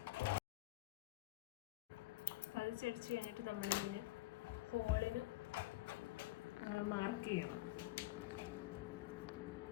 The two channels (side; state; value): right; quieter; 18.1 dB